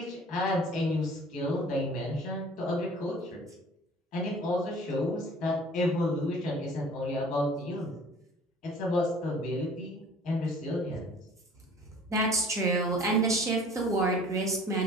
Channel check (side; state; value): both; normal; correlation 0.49